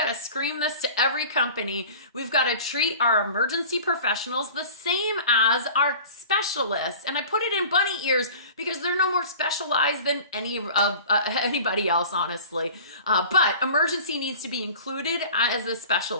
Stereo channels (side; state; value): both; inverted; correlation -0.41